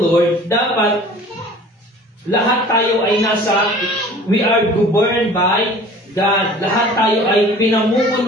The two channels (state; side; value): normal; both; correlation 0.46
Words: dapat lahat tayo ay we are governed by God. Lahat tayo ay